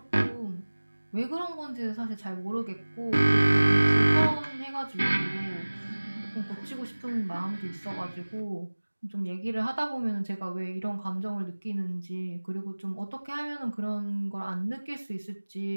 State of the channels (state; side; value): inverted; both; correlation -1.00